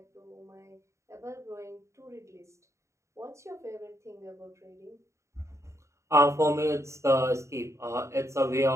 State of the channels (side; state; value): left; late; 0.14 ms